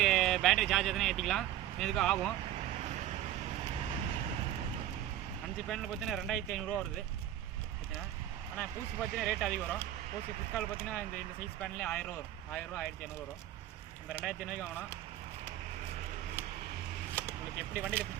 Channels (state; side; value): quieter; left; 12.3 dB